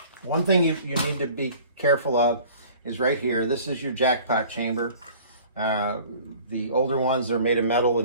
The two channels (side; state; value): both; inverted; correlation -0.48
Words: one thing you need to be careful of is right here. This is your jackpot chamber. The older ones are made of metal, the